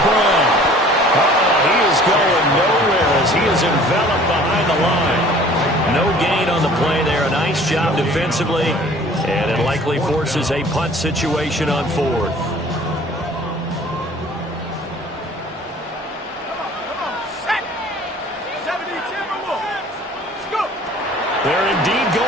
Brown. He is going nowhere as he is enveloped behind the line. No gain on the play there. A nice job defensively. And it likely forces a punt situation on 4th. They're indeed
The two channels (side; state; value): both; normal; correlation 0.50